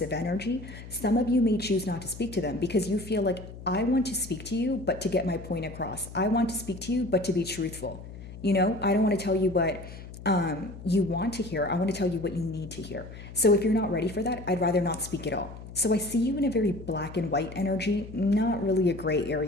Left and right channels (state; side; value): noise; left; hum, 14 dB below the sound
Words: energy, some of you may choose not to speak to them because you feel like, I want to speak to you, but to get my point across. I want to speak to you, but to be truthful. I don't want to tell you what you want to hear. I want to tell you what you need to hear. So if you're not ready for that, I'd rather not speak at all. So I see you in a very black and white energy, not really a gray